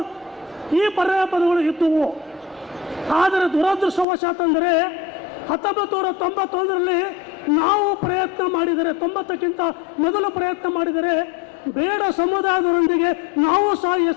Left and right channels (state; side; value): drops out; right; at 4.0 s